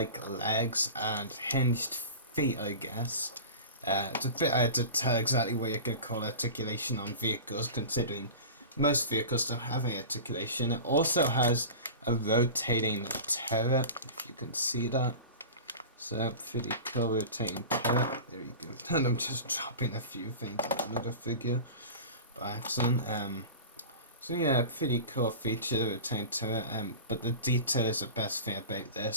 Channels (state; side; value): inverted; both; correlation -0.33